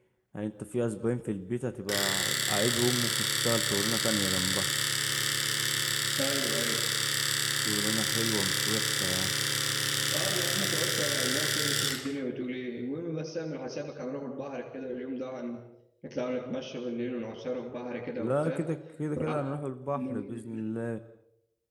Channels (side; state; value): both; identical; correlation 1.00